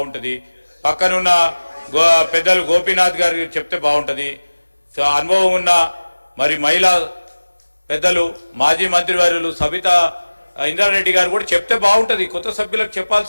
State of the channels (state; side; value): inverted; both; correlation -1.00